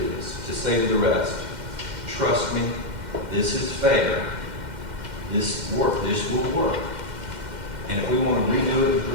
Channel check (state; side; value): late; left; 2.1 ms